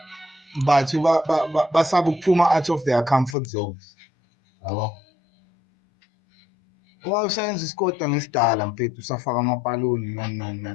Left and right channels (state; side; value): drops out; right; at 3.4 s